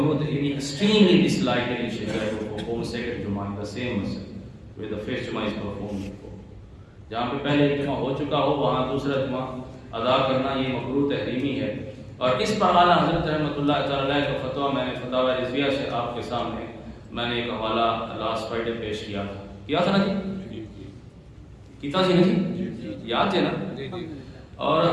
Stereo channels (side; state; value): both; identical; correlation 1.00